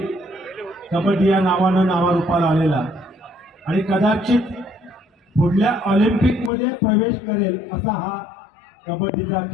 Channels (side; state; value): right; drops out; at 6.5 s